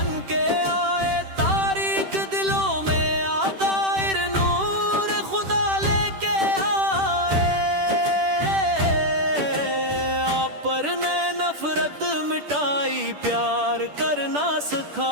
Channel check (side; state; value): left; late; 10 ms